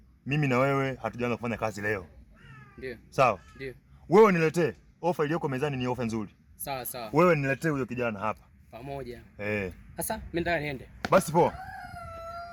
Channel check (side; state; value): both; identical; correlation 1.00